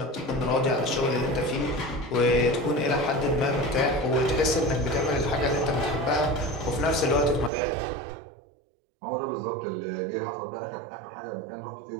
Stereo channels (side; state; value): left; drops out; at 7.5 s